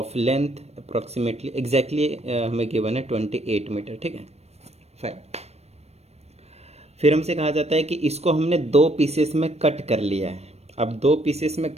length approximately exactly हमें गिवन है 28 मीटर, ठीक है। फाइन। फिर हमसे कहा जाता है कि इसको हमने 2 पीसेस में कट कर लिया है। अब 2 पीसेस में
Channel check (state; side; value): late; left; 0.31 ms